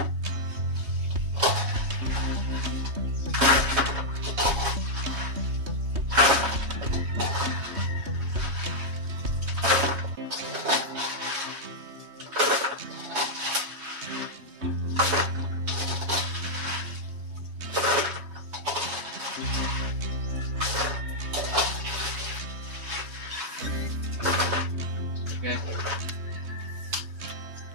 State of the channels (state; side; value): late; left; 3.2 ms